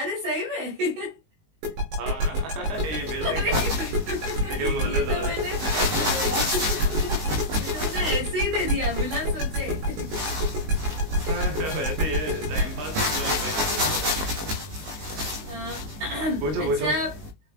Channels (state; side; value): late; left; 19 ms